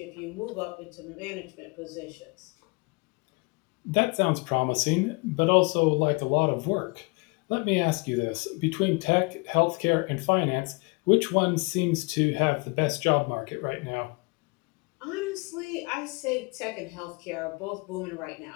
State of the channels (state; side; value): quieter; right; 29.4 dB